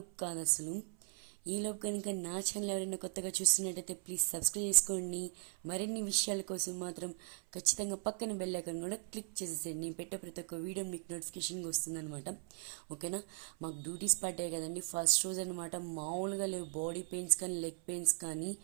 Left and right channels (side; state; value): left; silent; 52 dB below the other